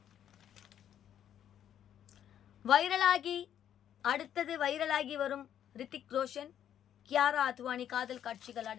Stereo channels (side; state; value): right; quieter; 10.1 dB